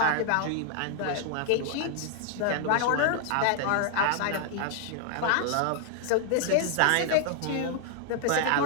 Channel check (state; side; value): different; both; correlation 0.00